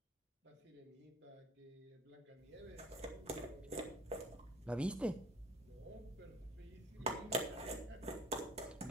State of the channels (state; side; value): normal; both; correlation 0.47